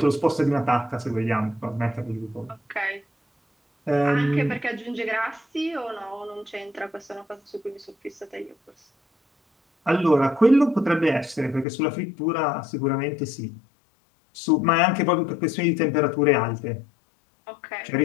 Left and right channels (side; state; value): right; drops out; at 11.7 s